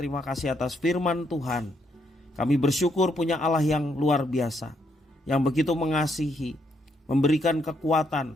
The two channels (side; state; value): both; normal; correlation 0.75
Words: kasih atas firman Tuhan. Kami bersyukur punya Allah yang luar biasa, yang begitu mengasihi, memberikan